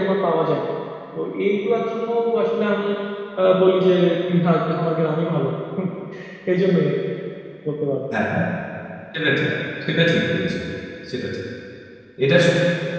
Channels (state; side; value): identical; both; correlation 1.00